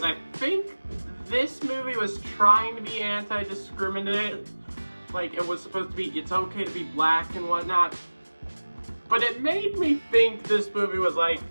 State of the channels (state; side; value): inverted; both; correlation -1.00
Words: I think this movie was trying to be anti-discriminatory. Like, it was supposed to be, it's okay to be black and whatnot. But it made me think this movie was like,